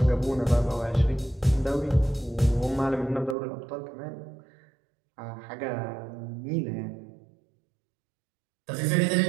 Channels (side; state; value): left; drops out; at 3.4 s